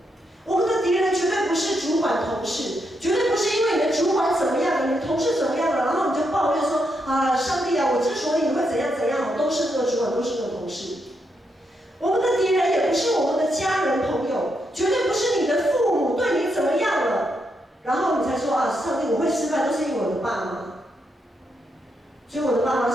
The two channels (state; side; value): normal; both; correlation 0.80